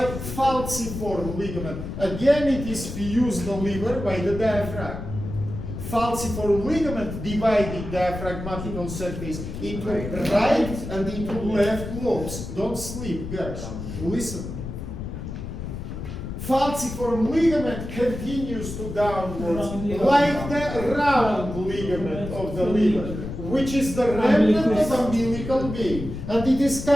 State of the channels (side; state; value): left; noise; rumble, 8 dB below the sound